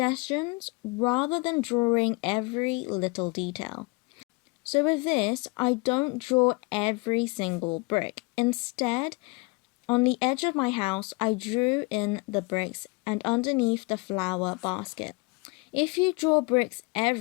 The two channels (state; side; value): quieter; right; 27.8 dB